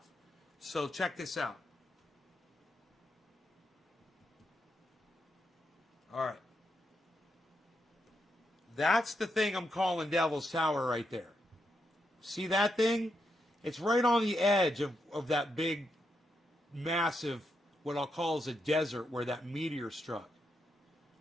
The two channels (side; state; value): both; normal; correlation 0.83